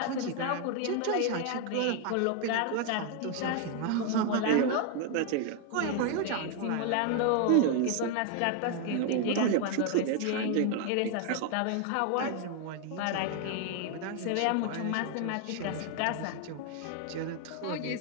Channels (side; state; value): both; different; correlation 0.01